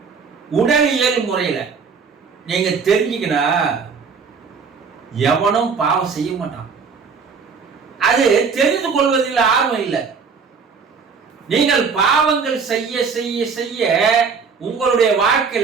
உடலியல் முறையில நீங்க தெரிஞ்சுக்கணும். எவனும் பாவம் செய்ய மாட்டான். அது தெரிந்து கொள்வதில் ஆர்வம் இல்லை. நீங்கள் பாவங்கள் செய்ய செய்ய செய்ய உங்களுடைய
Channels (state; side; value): quieter; left; 5.5 dB